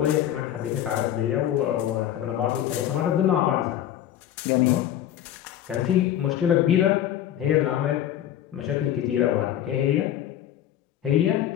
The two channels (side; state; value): right; quieter; 11.5 dB